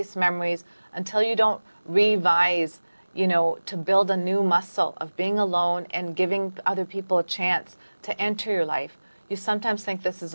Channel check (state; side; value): inverted; both; correlation -1.00